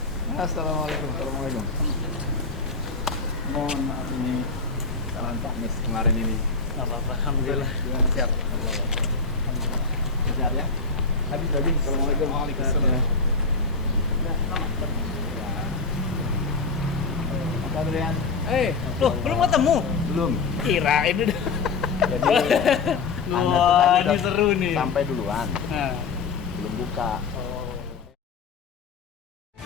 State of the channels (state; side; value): quieter; right; 4.4 dB